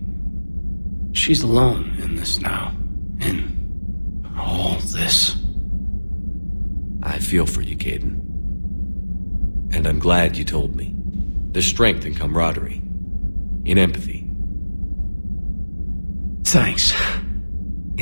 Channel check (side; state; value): both; inverted; correlation -1.00